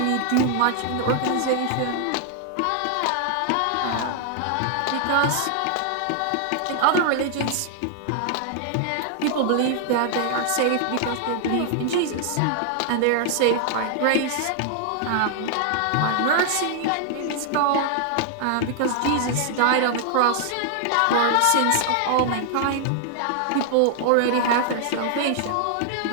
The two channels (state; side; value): different; both; correlation 0.00